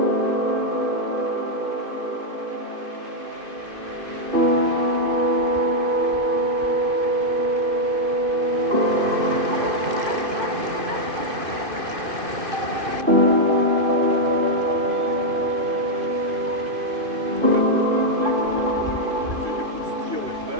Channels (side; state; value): left; late; 2.5 ms